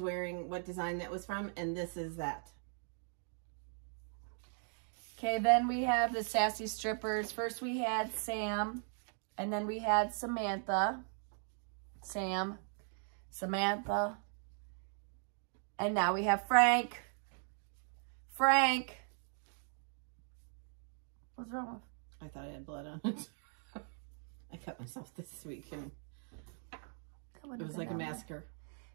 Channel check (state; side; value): silent; left; 52 dB below the other